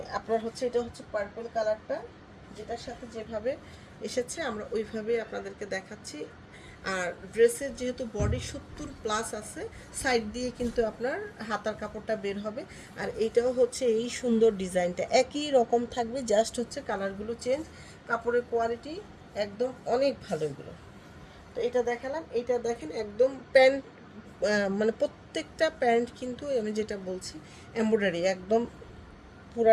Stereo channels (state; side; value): identical; both; correlation 1.00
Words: আপনার হচ্ছে এটা হচ্ছে পার্পল কালারটা, যেটার সাথে যেভাবে এসেছে আমরা ওইভাবে আপনাদেরকে দেখাচ্ছি। আর ড্রেসের যেহেতু বডি 70+ আছে, সাইড দিয়ে কিন্তু আপনার হাতার কাপড়টা বের হবে। আর এইটাও হচ্ছে এই সুন্দর ডিজাইনটা একই রকম থাকবে, জাস্ট হচ্ছে কালারগুলো চেঞ্জ। কাপড়ের কোয়ালিটি একদম অনেক ভালো এগুলো। তো এটা দেখালাম। এটা দেখেন একদম প্যান্ট, মানে প্রত্যেকটা প্যান্ট কিন্তু আমি যেটা বলছি এমব্রয়ডারি, একদম